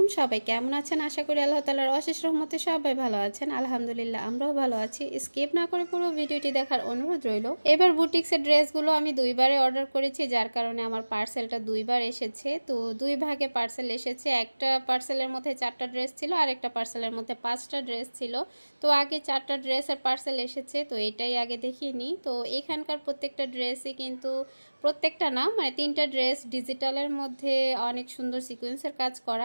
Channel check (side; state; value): both; inverted; correlation -1.00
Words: সবাই কেমন আছেন? আশা করি আল্লাহ তাআলার অশেষ রহমতে সবাই ভালো আছেন। আলহামদুলিল্লাহ আমরাও ভালো আছি। স্কিপ না করে পুরো ভিডিওটি দেখার অনুরোধ রইল। এবার বুটিক্সের ড্রেসগুলো আমি দুইবারে অর্ডার করেছি, যার কারণে আমার পার্সেলটা দুইবার এসেছে। তো দুই ভাগে পার্সেল এসেছে। একটা পার্সেলের মধ্যে 4টা ড্রেস ছিল আর একটা পার্সেলের মধ্যে 5টা ড্রেস ছিল। তো আগে 4টা ড্রেসের পার্সেল এসেছে, তো এটাই আগে দেখিয়ে নিই। তো এখানকার প্রত্যেকটা ড্রেসই কিন্তু, প্রত্যেকটা না মানে 3টা ড্রেস ডিজিটালের মধ্যে অনেক সুন্দর সিকোয়েন্সের কাজ